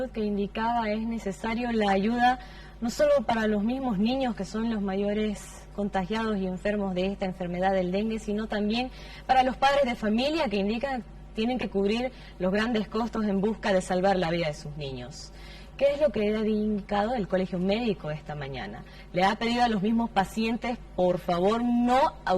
que indicaba es necesario la ayuda no solo para los mismos niños que son los mayores contagiados y enfermos de esta enfermedad del dengue, sino también para los padres de familia que indican tienen que cubrir los grandes costos en busca de salvar la vida de sus niños. ¿Qué es lo que ha indicado el Colegio Médico esta mañana? Le ha pedido a los mismos pacientes, por favor, no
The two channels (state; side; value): identical; both; correlation 1.00